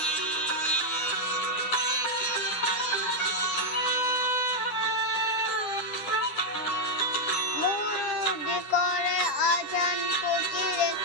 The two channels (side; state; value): right; late; 9.9 ms